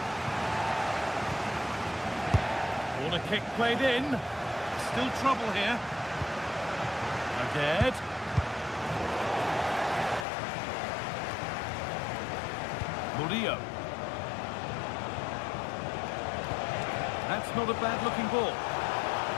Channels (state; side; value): drops out; right; at 10.2 s